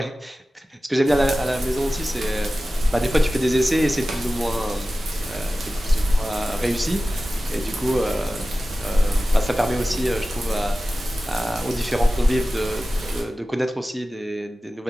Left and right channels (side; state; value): both; normal; correlation 0.95